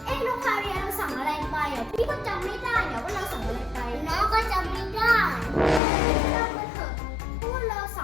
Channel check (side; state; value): right; drops out; at 5.8 s